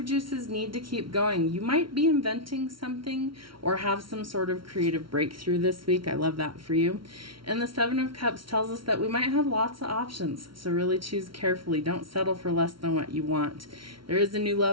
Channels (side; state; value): left; late; 0.74 ms